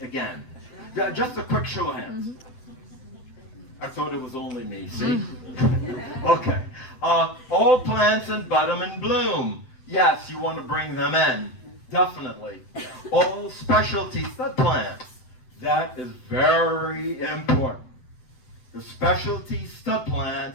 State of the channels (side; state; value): right; late; 7.9 ms